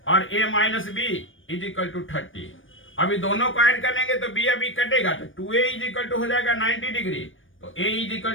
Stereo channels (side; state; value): right; late; 0.57 ms